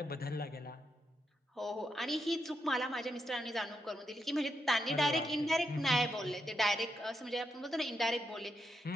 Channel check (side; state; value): both; normal; correlation 0.83